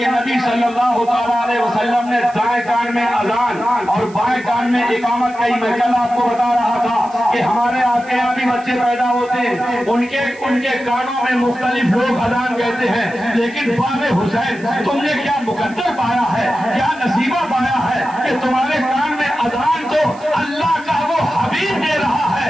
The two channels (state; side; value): noise; right; hiss, 25 dB below the sound